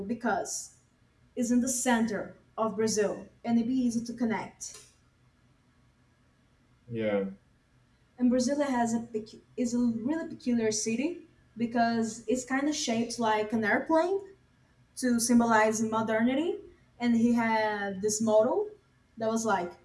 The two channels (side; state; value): both; identical; correlation 1.00